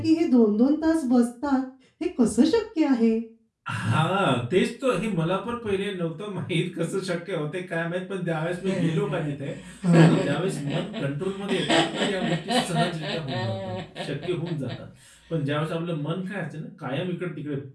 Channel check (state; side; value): identical; both; correlation 1.00